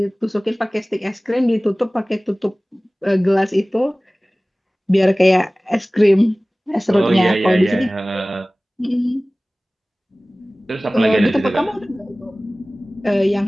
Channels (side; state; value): both; normal; correlation 0.98